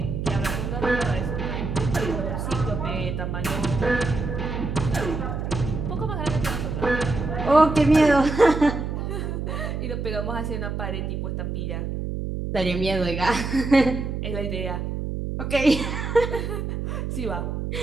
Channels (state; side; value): noise; right; hum, 3 dB below the sound